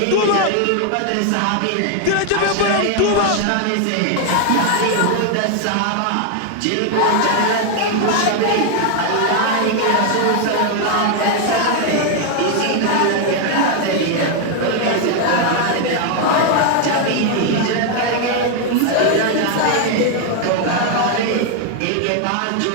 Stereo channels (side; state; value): both; different; correlation 0.01